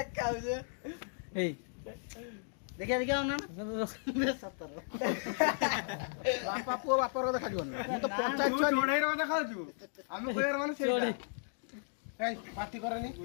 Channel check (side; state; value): right; silent; digital silence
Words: ଏଇ ଦେଖିଆ ନା ବାପା ପୁଅ ବାପାର ଦେଖାଯିବ ନା ମୁଁ ତ ପଞ୍ଚାୟତ ଛୁଆ ଚଢେଇର ଦେଖାଉଛୁ ଆମେ କହିବାର ମାନେ ସେଇଟା ଏଇ ପାଟି କରନି